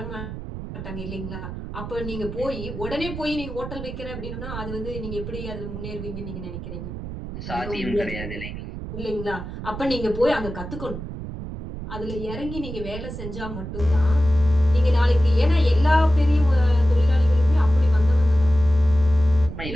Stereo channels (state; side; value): noise; right; rumble, 9 dB below the sound